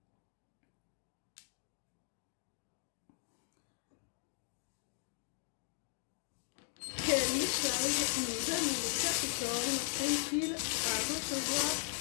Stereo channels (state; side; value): silent; right; digital silence